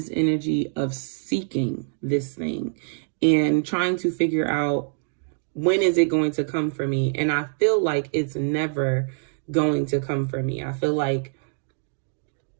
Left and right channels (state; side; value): silent; left; 62 dB below the other